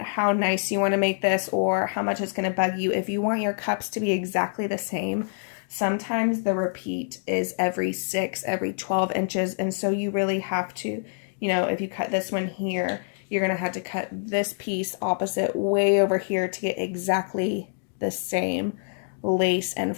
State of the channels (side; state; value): right; silent; digital silence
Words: nice you want to make this or how much it's going to bug you, if you want your cups to be exactly the same, sometimes the repeat is every 6, every 12 inches, and so you really have to, if you cut this one here, you're going to have to cut this piece opposite way over here to get exactly the same lace and